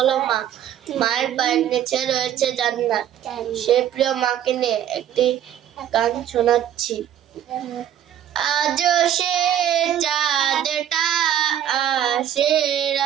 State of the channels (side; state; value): left; quieter; 10.6 dB